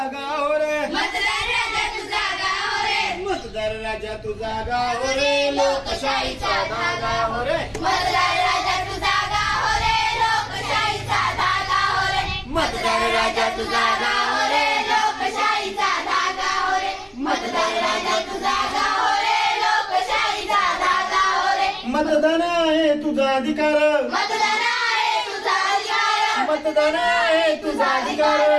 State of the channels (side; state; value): both; identical; correlation 1.00